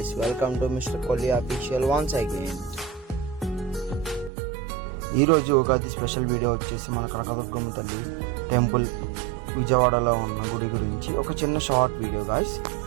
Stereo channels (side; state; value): left; drops out; at 4.3 s